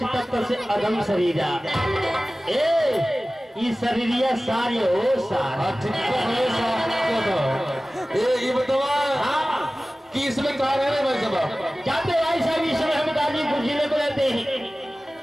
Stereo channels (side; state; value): both; normal; correlation 0.97